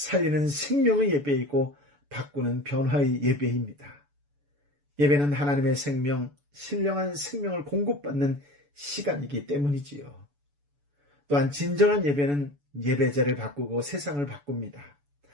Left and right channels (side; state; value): left; late; 7.0 ms